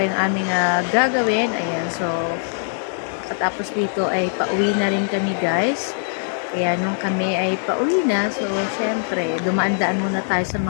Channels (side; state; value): right; silent; digital silence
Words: yung aming gagawin, ayan, so katapos dito ay pauwi na rin kami guys. Kaya nung kami ay pauwi na, so syempre dumaan-daan muna tayo sa